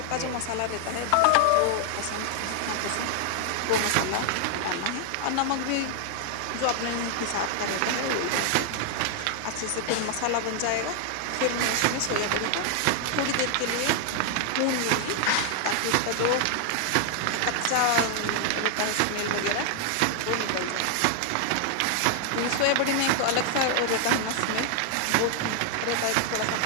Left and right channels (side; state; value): both; different; correlation 0.00